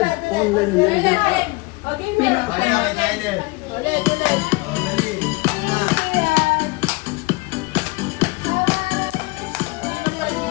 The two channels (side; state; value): right; quieter; 24.9 dB